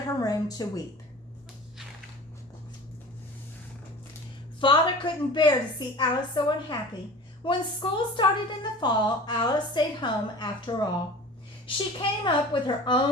her room to weep. Father couldn't bear to see Alice so unhappy. When school started in the fall, Alice stayed home after all. She came up with her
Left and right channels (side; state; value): both; normal; correlation 0.39